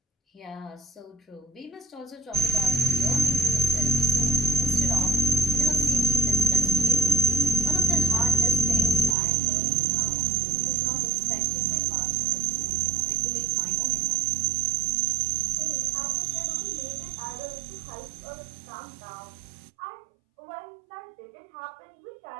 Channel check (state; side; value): drops out; left; at 9.2 s